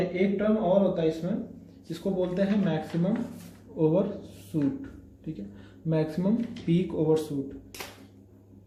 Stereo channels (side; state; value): both; identical; correlation 1.00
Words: एक टर्म और होता है इसमें जिसको बोलते हैं मैक्सिमम ओवरशूट। ठीक है, मैक्सिमम पीक ओवरशूट,